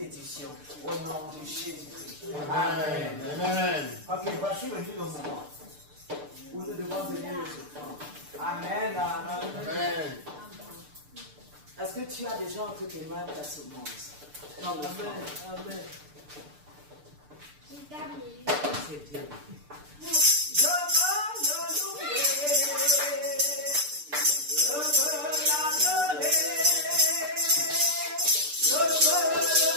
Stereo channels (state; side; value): late; left; 6.8 ms